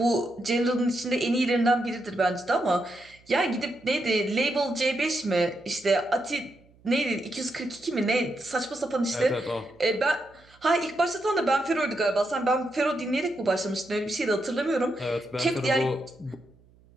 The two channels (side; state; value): right; noise; hum, 29 dB below the sound